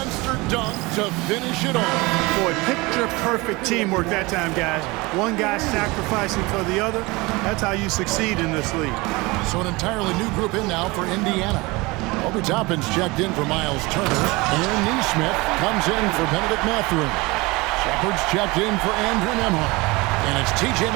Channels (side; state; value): left; quieter; 23.6 dB